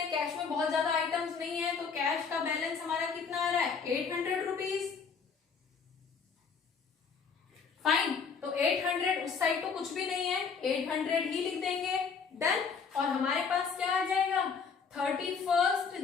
कैश में बहुत ज्यादा आइटम्स नहीं है, तो कैश का बैलेंस हमारा कितना आ रहा है 800 रुपीज। फाइन, तो 800 उस साइड तो कुछ भी नहीं है, 800 ही लिख देंगे। डन। और हमारे पास क्या आ जाएगा 31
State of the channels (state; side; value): quieter; right; 5.7 dB